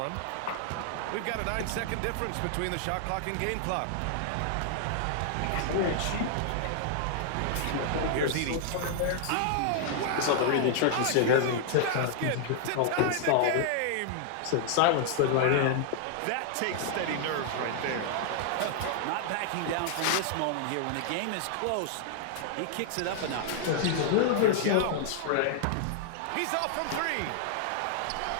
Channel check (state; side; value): different; both; correlation -0.01